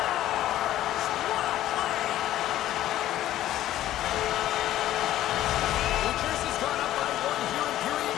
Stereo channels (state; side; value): quieter; right; 13.4 dB